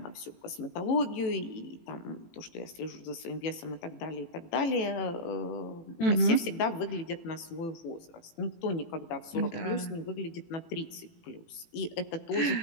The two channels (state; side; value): late; right; 18 ms